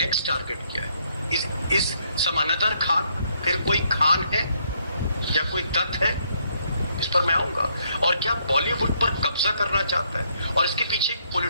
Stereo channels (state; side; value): inverted; both; correlation -0.71